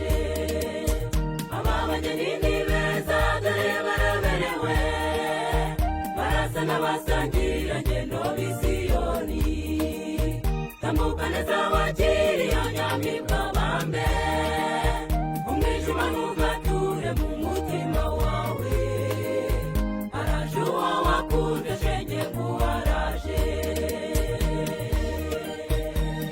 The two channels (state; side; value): identical; both; correlation 1.00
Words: ababageni ni beza dore baraberewe, barasa n'abasangira ngendo b'Isiyoni, tambuka neza wakiri anyamibwa bambe, umwijima ntugature mu mutima wawe, araje uwo wakunze shenge nguwaraje.